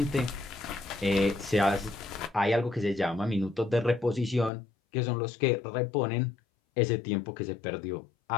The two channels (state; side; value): drops out; right; at 4.5 s